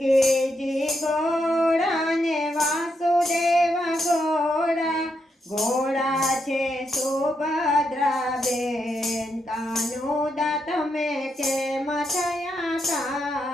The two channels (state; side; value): normal; both; correlation 0.81